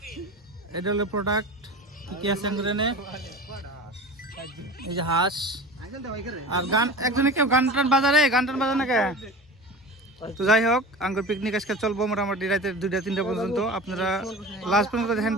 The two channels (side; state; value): both; normal; correlation 0.34